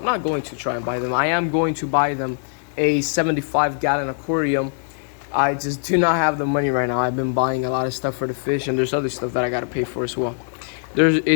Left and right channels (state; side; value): silent; right; 63 dB below the other